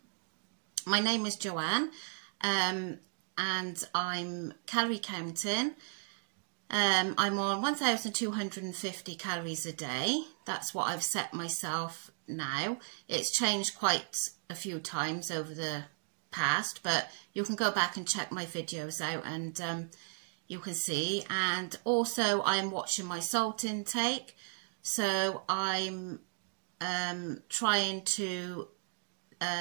My name is Joanne and I'm calorie counting. I'm on 1,250 calories a day. That's what I've set myself now. It's changed quite a few times over the past, but you can go back and check my videos out and you can see. And also I'm watching my salt intake, so I'm trying to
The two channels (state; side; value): silent; left; 54 dB below the other